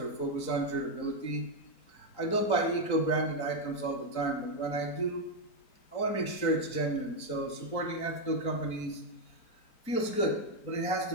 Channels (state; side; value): late; right; 4.0 ms